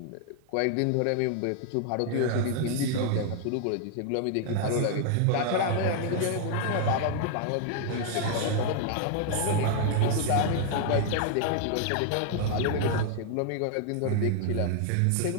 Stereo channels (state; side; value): different; both; correlation 0.00